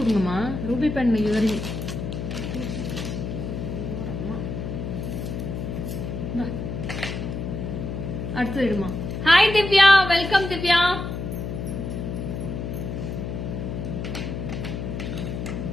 ரூபி பெண் இயரிங். அடுத்து இடுமா. Hi Divya, welcome Divya.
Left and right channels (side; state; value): left; noise; hum, 5 dB below the sound